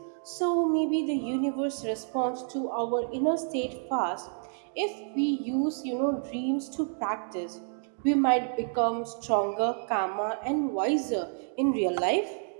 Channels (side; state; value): left; silent; 58 dB below the other